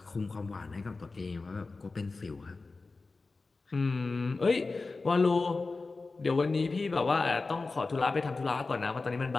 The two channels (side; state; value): right; quieter; 3.8 dB